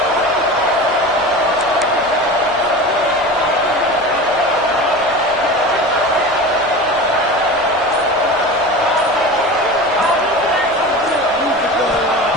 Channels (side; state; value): left; noise; rumble, 26 dB below the sound